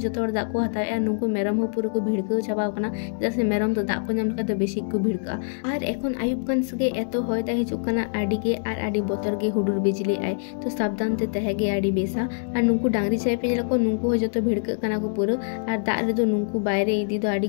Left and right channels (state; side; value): silent; right; digital silence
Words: दाग को हतावे नुंकु मेरम हो पूरा को भिड़काव चाबाव काना चेदा से मेरम तो दाग को नाम लगा तो बेसी को भिड़का आर एखन आयुब कान सगे एतो होय दा हिजु काना आडी गे आर आडी बोतर गे हुडुर बिजली आय तो सावधान ते तहेगे आडी बेसा आर नुंकु डांगरी चाय पे को नुंकु हो जतो भिड़का काना को पूरा आर दाग रे दो नुंकु बायरे इदी दो आडी